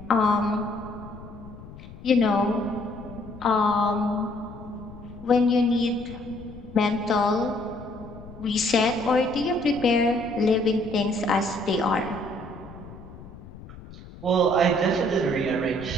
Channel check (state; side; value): noise; left; rumble, 16 dB below the sound